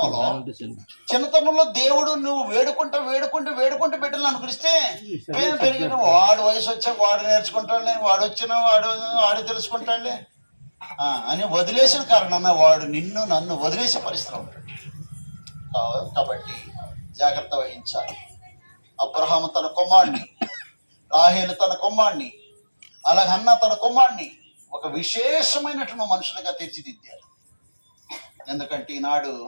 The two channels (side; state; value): both; inverted; correlation -1.00